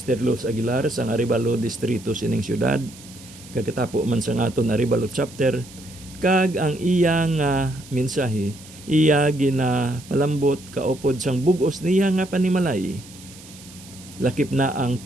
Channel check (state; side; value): noise; right; hiss, 20 dB below the sound